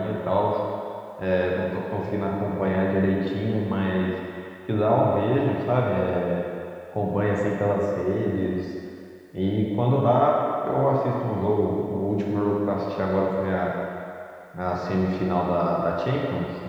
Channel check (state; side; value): identical; both; correlation 1.00